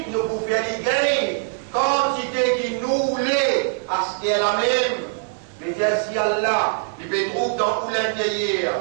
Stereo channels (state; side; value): silent; left; digital silence